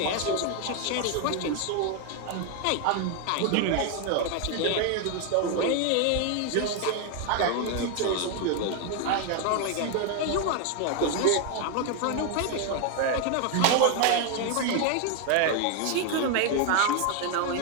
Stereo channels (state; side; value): different; both; correlation 0.01